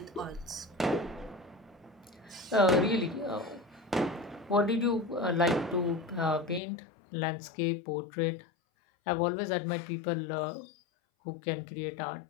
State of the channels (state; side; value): drops out; right; at 6.6 s